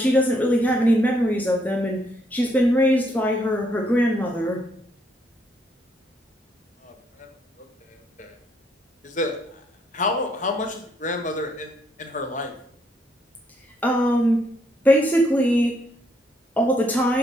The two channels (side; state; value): both; normal; correlation 0.72